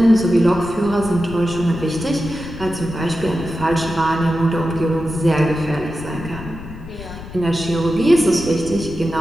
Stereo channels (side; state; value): left; noise; rumble, 13 dB below the sound